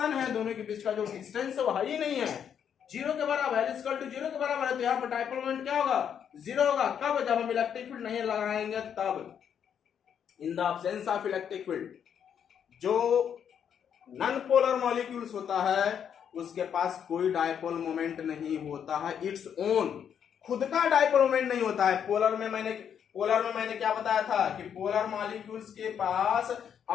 है दोनों के बीच का जो डिस्टेंस है वो ही नहीं है, 0 के बराबर है, इक्वल टू 0 के बराबर है। तो यहाँ पर डायपोल मोमेंट क्या होगा? 0 होगा। कब? जब हम इलेक्ट्रिक फील्ड नहीं लगाएंगे तब। इन the absence of electric field, जो नॉन पोलर मॉलिक्यूल्स होता है उसके पास कोई डायपोल मोमेंट नहीं होता है, इट्स ओन, खुद का डायपोल मोमेंट नहीं होता है। पोलर में मैंने क्या बताया था कि पोलर मॉलिक्यूल्स के पास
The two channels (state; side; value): quieter; right; 8.3 dB